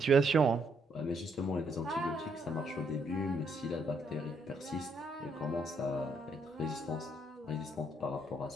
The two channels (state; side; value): normal; both; correlation 0.73